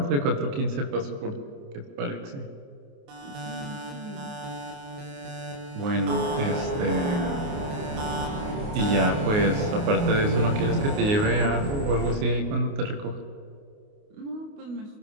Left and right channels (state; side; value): late; left; 29 ms